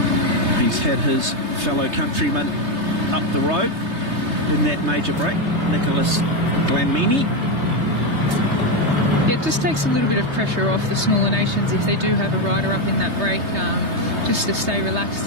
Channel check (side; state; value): left; late; 3.3 ms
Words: He's had his fellow countryman up the road in that major break, Nicholas Glanmini. Yeah, it just takes a little bit of pressure off the smaller nations if they do have a rider up in that break, just to stay